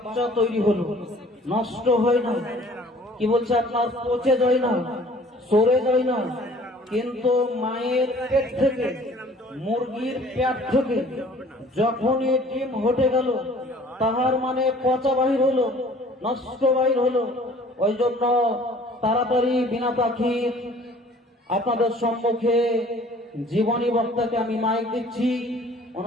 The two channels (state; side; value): normal; both; correlation 0.52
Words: তৈরি হলো, নষ্ট হয় না। কি বলছে আপনার পচে যায় না, সরে যায় না। কিন্তু মায়ের পেট থেকে, মুরগির পেট থেকে যখনই ডিম হটে গেল তাহার মানে পচা বাহির হলো, নষ্ট বাহির হলো। ওই জন্য তাড়াতাড়ি বিনা পাখি আপনাদের সম্মুখে জীবনী বক্তাকে আমি মাইক দিচ্ছি।